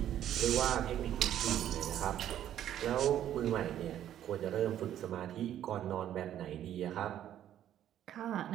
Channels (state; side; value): quieter; left; 11.2 dB